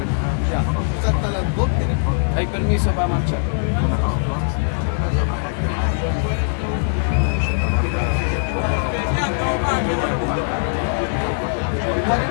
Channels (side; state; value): right; silent; 63 dB below the other